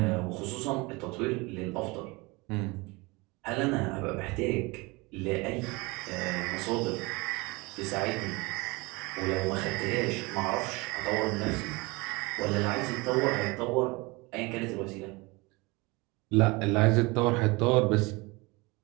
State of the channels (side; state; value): left; quieter; 25.1 dB